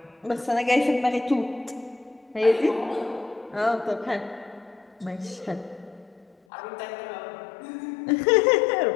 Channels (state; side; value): drops out; right; at 6.4 s